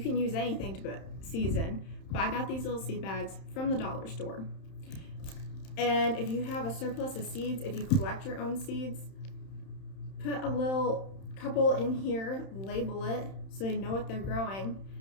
can use anything to put seeds in, but I got these little seed bags from the dollar store. And if you have a surplus of seeds, if you collect your own seeds, put a little couple in here, label it so they know what they're growing,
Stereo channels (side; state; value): right; late; 31 ms